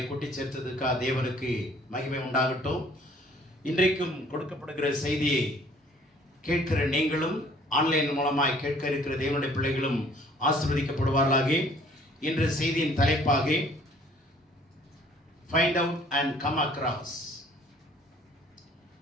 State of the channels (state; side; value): normal; both; correlation 0.57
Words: கூட்டி சேர்த்ததுக்காக தேவனுக்கு மகிமை உண்டாகட்டும். இன்றைக்கும் கொடுக்கப்படுகிற செய்தியை கேட்கிற நீங்களும் ஆன்லைன் மூலமாய் கேட்க இருக்கிற தேவனுடைய பிள்ளைகளும் ஆசீர்வதிக்கப்படுவார்களாக. இன்று செய்தியின் தலைப்பாக find out and come across,